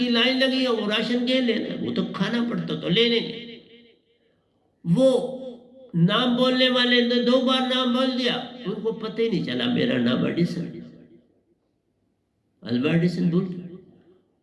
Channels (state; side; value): identical; both; correlation 1.00